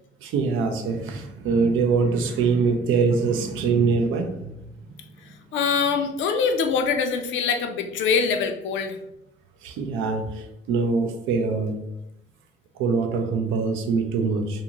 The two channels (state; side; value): normal; both; correlation 0.43